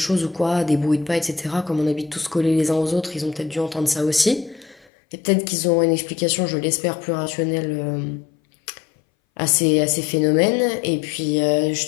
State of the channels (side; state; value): right; drops out; at 4.9 s